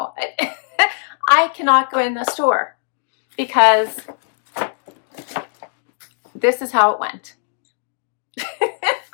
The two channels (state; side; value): silent; right; 66 dB below the other